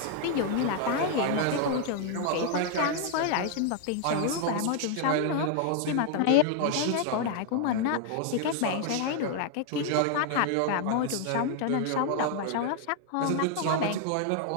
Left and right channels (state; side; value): different; both; correlation 0.00